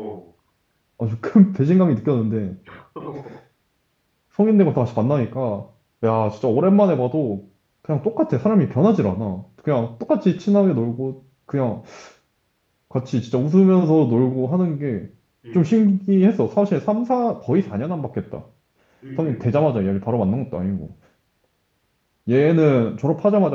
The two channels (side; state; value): both; identical; correlation 1.00